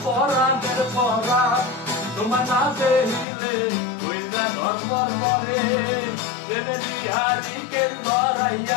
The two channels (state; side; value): drops out; right; at 3.2 s